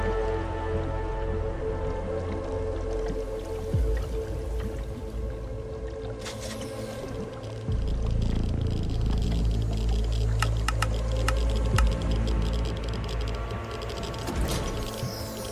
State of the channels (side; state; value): both; identical; correlation 1.00